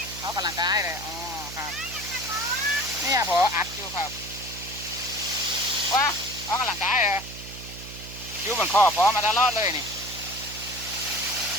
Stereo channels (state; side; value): noise; right; hum, 13 dB below the sound